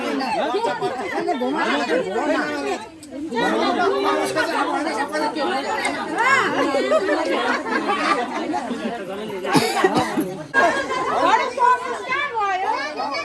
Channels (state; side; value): identical; both; correlation 1.00